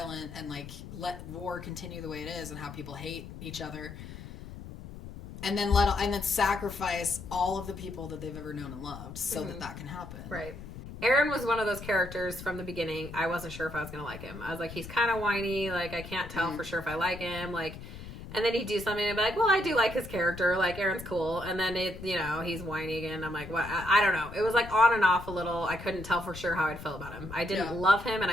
and, like, let war continue the way it is and how people hate each other. And then sacrifice all of the people that they've ever known and loved so that can happen. Right. Eren was one of those characters from the beginning. I wasn't sure if I was going to like him. I was like, he's kind of whiny. Like, I can't tell for sure if I like him. Like, and then he'd do something and be like, well, I do like his character. Like, Eren's cool. And then, he's whiny again. I'm like, what? I don't know. It was like on and off a little. I couldn't tell for sure how I'd feel about him. I didn't love him and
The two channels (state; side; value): noise; left; rumble, 12 dB below the sound